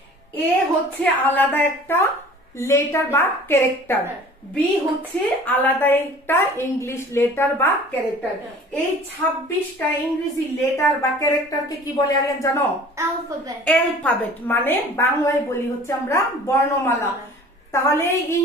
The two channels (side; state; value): both; normal; correlation 0.46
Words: এ হচ্ছে আলাদা একটা লেটার বা ক্যারেক্টার, বি হচ্ছে আলাদা একটা ইংলিশ লেটার বা ক্যারেক্টার। এই 26টা ইংরেজি লেটার বা ক্যারেক্টারকে কি বলে আরিয়ান জানো? অ্যালফাবেট। মানে বাংলায় বলি হচ্ছে আমরা বর্ণমালা। তাহলে